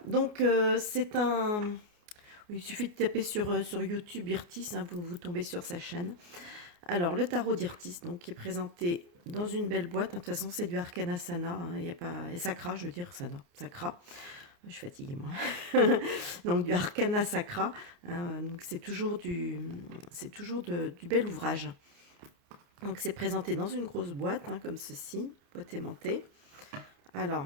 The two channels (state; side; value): late; left; 29 ms